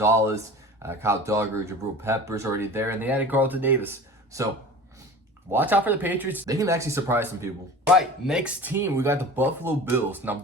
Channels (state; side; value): normal; both; correlation 0.38